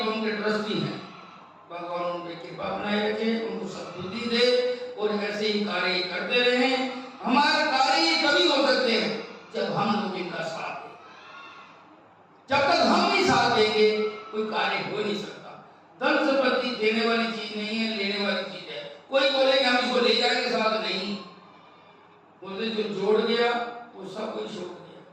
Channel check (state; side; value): identical; both; correlation 1.00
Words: के ट्रस्टी हैं, भगवान उन पे कृपा बनाए रखे, उनको सद्बुद्धि दे और ऐसे ही कार्य करते रहे। हमारे कार्य कभी हो सकते हैं जब हम लोग इनका साथ दें। जब तक हम नहीं साथ देंगे कोई कार्य हो नहीं सकता। धन संपत्ति देने वाली चीज नहीं है, लेने वाली चीज है। कोई बोले कि हम इसको ले जाएंगे साथ, नहीं बोलते। जो जोड़ गया वो सब कुछ छोड़ गया,